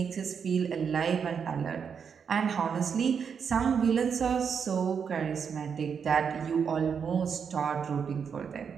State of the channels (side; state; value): left; quieter; 6.7 dB